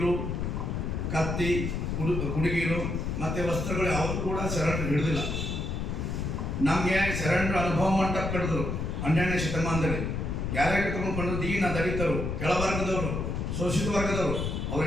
ಕತ್ತಿ, ಕುಡುಗಿಲು ಮತ್ತು ವಸ್ತ್ರಗಳು ಯಾವುದು ಕೂಡ ಶರಣರು ಹಿಡಿದಿಲ್ಲ. ನಮಗೆ ಶರಣರು ಅನುಭವ ಮಂಟಪ ಕಟ್ಟಿದ್ರು 12ನೇ ಶತಮಾನದಲ್ಲಿ. ಯಾರ್ಯಾರು ಕರ್ಕೊಂಡು ದೀನ ದಲಿತರು, ಕೆಳವರ್ಗದವರು, ಶೋಷಿತ ವರ್ಗದವರು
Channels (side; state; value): left; noise; rumble, 2 dB below the sound